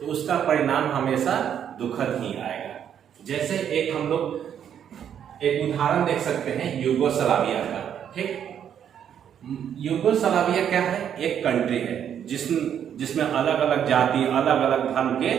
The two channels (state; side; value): quieter; left; 9.0 dB